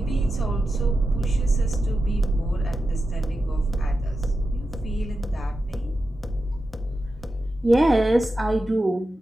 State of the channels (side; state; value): both; normal; correlation 0.91